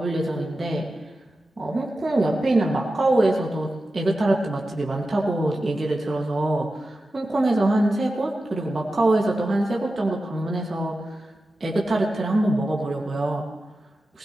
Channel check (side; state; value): both; normal; correlation 0.92